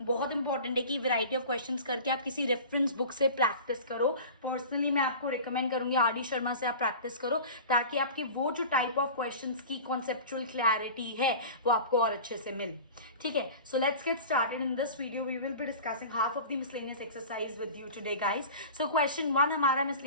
बहुत इंपॉर्टेंट है कि वैरायटी ऑफ क्वेश्चंस करके आप किसी रेफरेंस बुक से प्रैक्टिस करो. पर्सनली मैं आपको रिकमेंड करूंगी आर.डी. शर्मा से आप प्रैक्टिस करो ताकि आपके वो जो टाइप ऑफ क्वेश्चंस की कॉन्सेप्चुअल क्लैरिटी है वो आपको और अच्छे से मिले. ठीक है, so let's get started. In this video we will be discussing half of the miscellaneous exercise with you today guys. So question 1 हमारा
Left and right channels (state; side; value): inverted; both; correlation -0.36